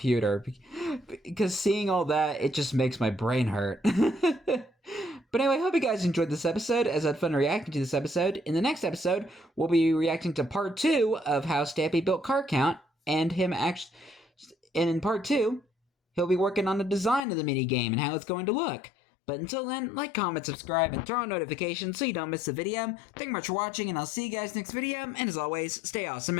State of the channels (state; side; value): drops out; right; at 17.2 s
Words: because seeing all that, it just makes my brain hurt. But anyway, I hope you guys enjoyed this episode, as I had fun reacting to this episode. In the next episode, we'll be reacting to part 2 of how Stampy built Card Count, and in part 2, he'll be working on the design of the mini game and how it's going to look. But until then, like, comment, subscribe, and throw on notifications so you don't miss the video. Thank you much for watching, and I'll see you guys next video. And as always, stay awesome